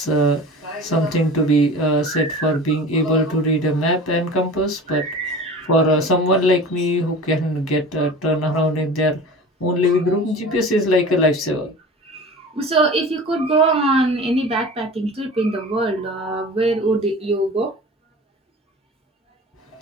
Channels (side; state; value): both; normal; correlation 0.37